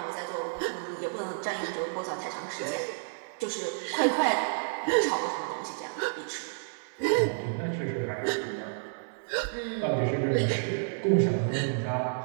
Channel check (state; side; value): silent; left; 58 dB below the other